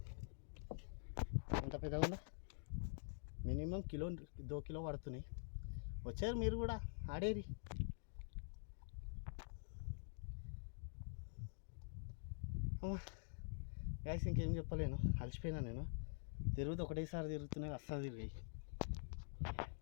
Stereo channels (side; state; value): right; silent; digital silence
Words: ఎంత పెద్దగా ఉందా, మినిమం కిలో 2 కిలో పడుతున్నాయి. వచ్చారు మీరు కూడా ఆడేరి. గ్యాస్ ఇంకేం చెప్పలేను, అలసిపోయినా నేను. తిరుగుతూ ఒకటేసారి తిరుగుతున్నాయి, అస్సలు తిరిగాయి.